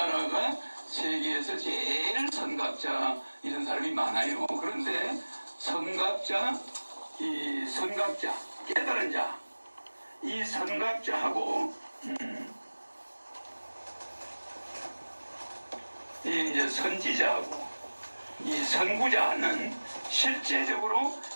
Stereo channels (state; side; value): inverted; both; correlation -1.00